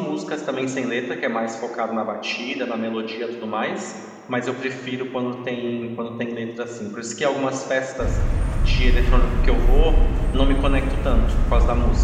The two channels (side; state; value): both; identical; correlation 1.00